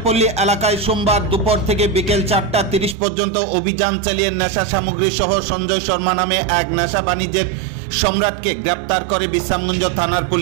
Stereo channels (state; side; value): drops out; left; at 3.0 s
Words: এলাকায় সোমবার দুপুর থেকে বিকেল 4টা 30 পর্যন্ত অভিযান চালিয়ে নেশা সামগ্রী সহ সঞ্জয় শর্মা নামে এক নেশা বাণিজ্যের সম্রাটকে গ্রেপ্তার করে বিশ্রামগঞ্জ থানার